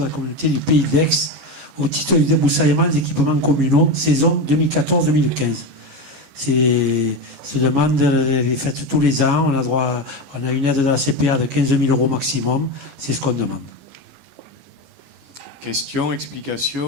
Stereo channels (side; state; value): left; late; 14 ms